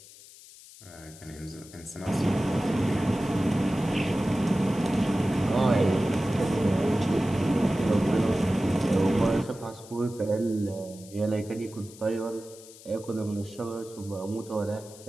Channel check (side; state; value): left; noise; hiss, 20 dB below the sound